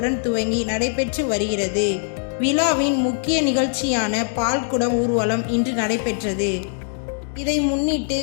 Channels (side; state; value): right; silent; 63 dB below the other